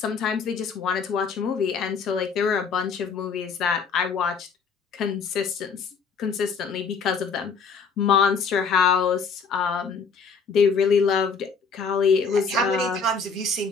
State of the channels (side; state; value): right; quieter; 5.3 dB